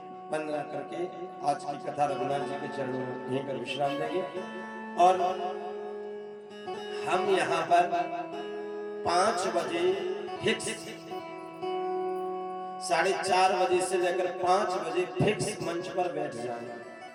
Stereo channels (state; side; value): identical; both; correlation 1.00